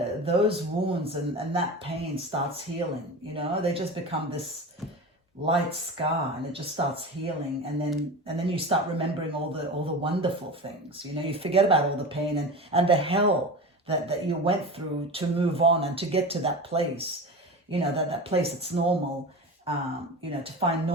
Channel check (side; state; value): both; normal; correlation 0.28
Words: those wounds and that pain starts healing, you know, they just become this light scar, and it just starts healing, and then you start remembering all the wonderful things, you know, you forget about all the pain and the hell that you went through to move on and to get to that place, you know, that place that's normal, you know, to find